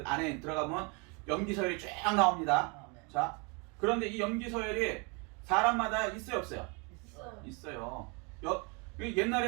안에 들어가면 염기 서열이 쫙 나옵니다. 아멘. 자, 그런데 이 염기 서열이 사람마다 있어요, 없어요? 있어요. 있어요.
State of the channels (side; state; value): left; quieter; 32.0 dB